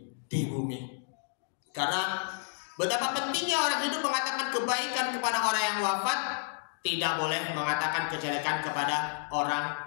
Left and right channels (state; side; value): silent; right; 57 dB below the other